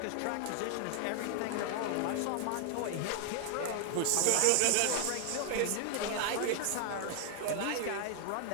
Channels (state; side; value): different; both; correlation 0.00